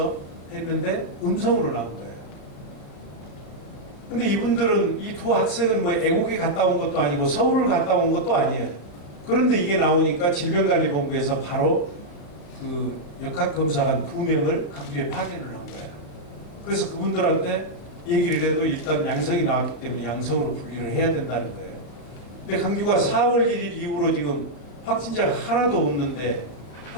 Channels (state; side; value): late; right; 34 ms